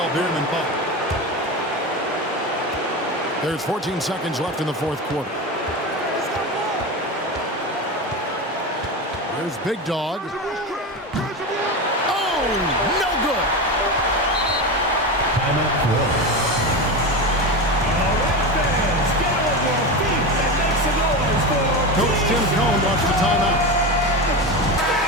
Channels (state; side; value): normal; both; correlation 0.21